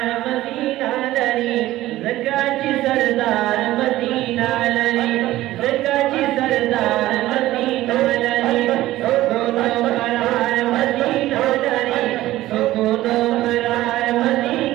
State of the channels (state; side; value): quieter; left; 15.8 dB